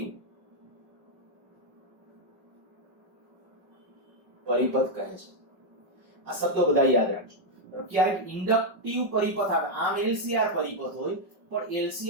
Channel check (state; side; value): late; left; 5.3 ms